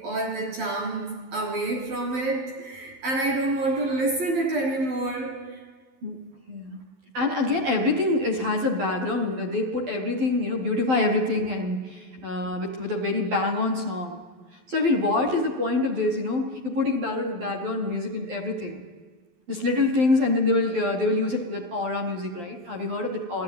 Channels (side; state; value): left; late; 12 ms